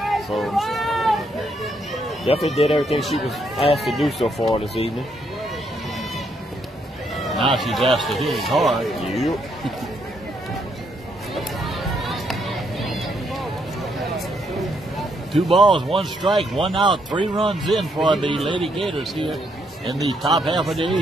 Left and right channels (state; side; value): normal; both; correlation 0.74